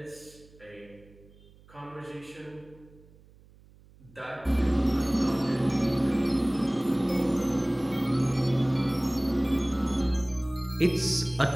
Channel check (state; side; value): noise; right; hum, 26 dB below the sound